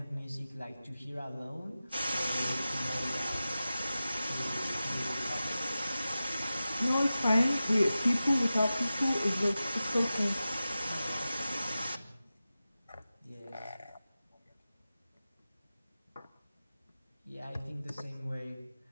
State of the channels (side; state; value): both; inverted; correlation -0.94